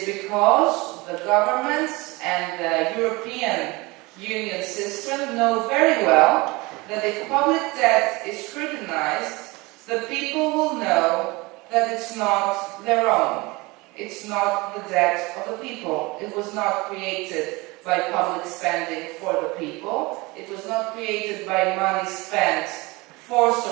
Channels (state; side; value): quieter; left; 23.8 dB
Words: because the governments and the European Union system know very well that if public debt is scrutinized, the people will know that it's not their own. It's not the debt of the people. It was not created by public spending for the people. It was not created by money spent for